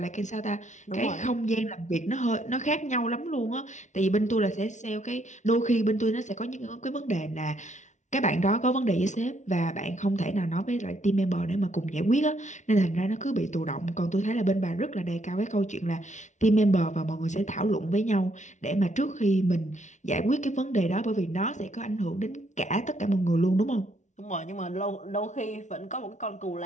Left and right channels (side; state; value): right; late; 0.35 ms